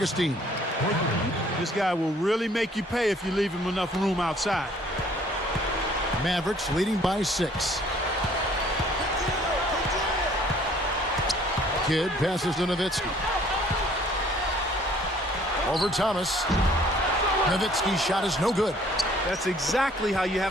This guy will really make you pay if you leave him enough room outside. Mavericks leading by 6. Kidd passes to Nowitzki. Over Thomas. Nowitzki's shot is no good. That's exactly how you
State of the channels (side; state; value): both; normal; correlation 0.58